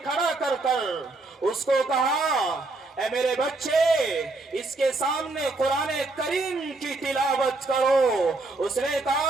کھڑا کر اس کو کہا، اے میرے بچے، اس کے سامنے قرآن کریم کی تلاوت کرو۔ اس نے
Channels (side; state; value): left; quieter; 3.2 dB